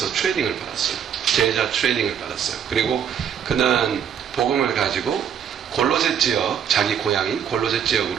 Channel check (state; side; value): quieter; left; 8.5 dB